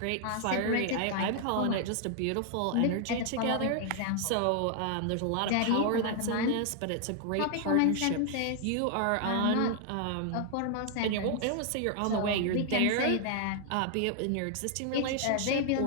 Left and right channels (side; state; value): both; different; correlation 0.00